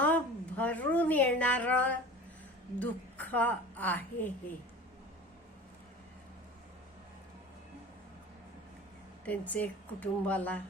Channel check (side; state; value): both; normal; correlation 0.38